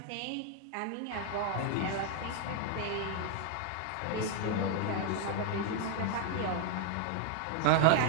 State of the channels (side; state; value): both; different; correlation 0.00